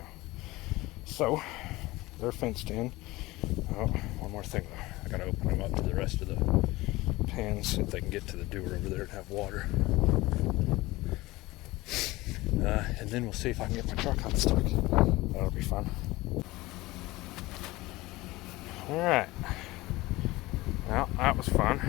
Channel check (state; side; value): quieter; right; 19.9 dB